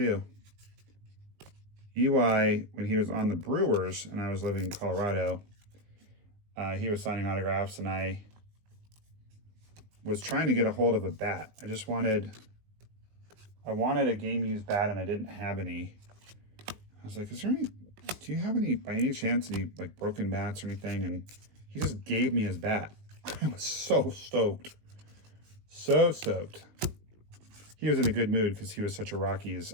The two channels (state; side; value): late; left; 19 ms